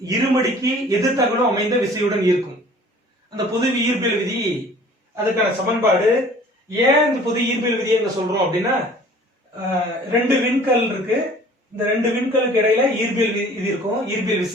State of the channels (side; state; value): both; normal; correlation 0.50